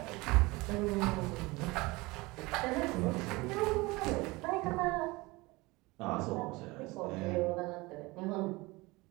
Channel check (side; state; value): left; quieter; 22.9 dB